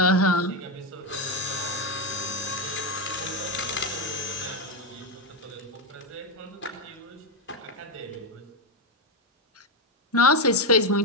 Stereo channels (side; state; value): both; normal; correlation 0.08